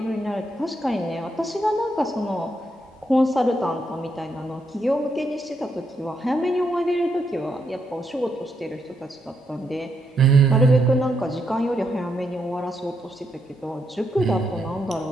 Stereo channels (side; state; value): both; normal; correlation 0.79